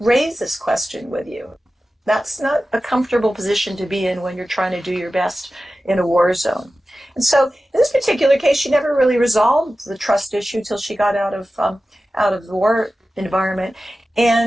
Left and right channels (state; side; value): normal; both; correlation 0.95